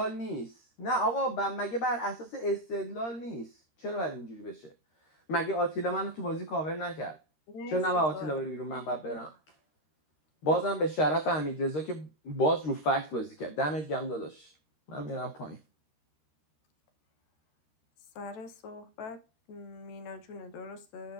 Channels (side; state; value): right; late; 13 ms